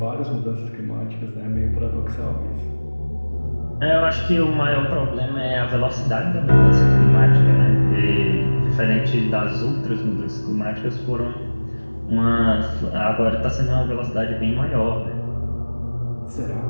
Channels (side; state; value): both; inverted; correlation -1.00